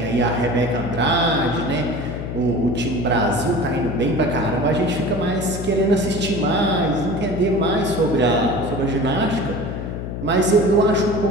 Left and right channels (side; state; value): left; noise; hum, 6 dB below the sound